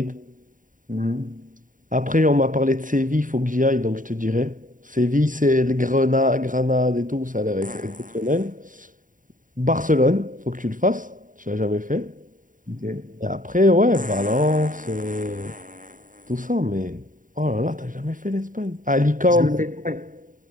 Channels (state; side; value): late; left; 0.39 ms